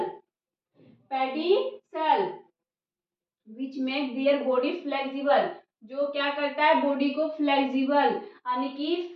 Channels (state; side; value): identical; both; correlation 1.00